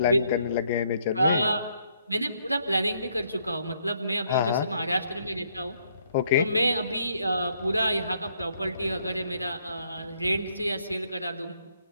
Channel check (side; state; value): both; inverted; correlation -0.70